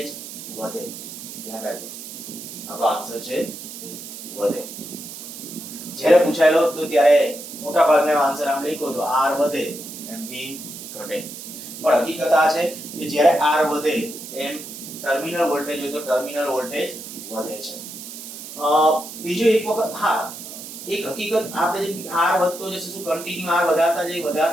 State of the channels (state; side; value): noise; right; hiss, 11 dB below the sound